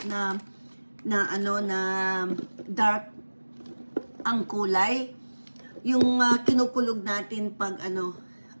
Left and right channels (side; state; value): both; inverted; correlation -1.00